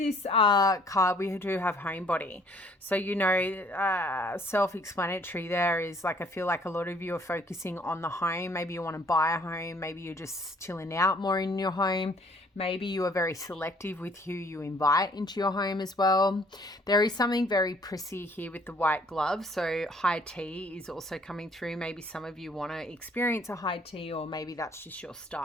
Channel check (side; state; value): both; normal; correlation 0.60